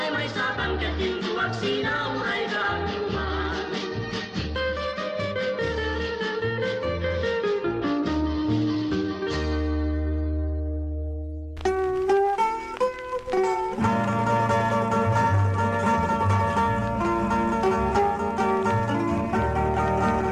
may satan ken hintuak sinauray ganungan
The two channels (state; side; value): identical; both; correlation 1.00